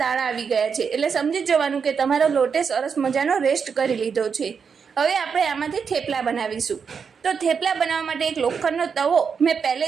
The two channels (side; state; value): left; quieter; 6.2 dB